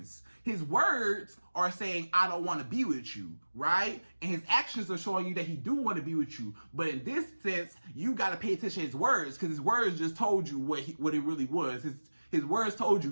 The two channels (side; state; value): both; inverted; correlation -1.00